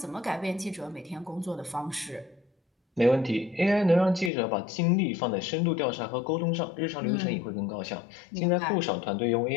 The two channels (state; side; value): drops out; right; at 4.3 s